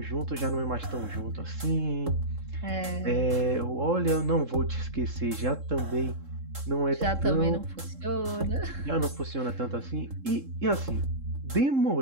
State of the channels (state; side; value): late; left; 3.7 ms